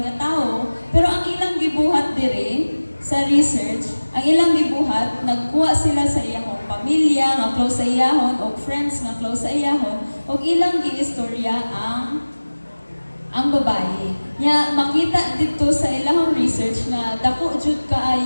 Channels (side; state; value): both; inverted; correlation -1.00